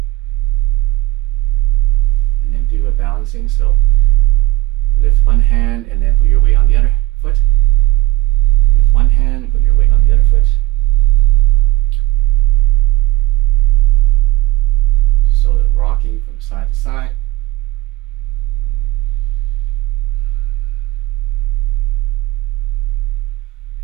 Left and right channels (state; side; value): quieter; left; 16.7 dB